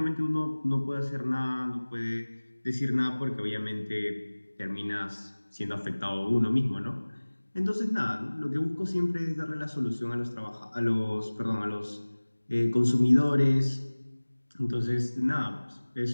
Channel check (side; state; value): both; inverted; correlation -1.00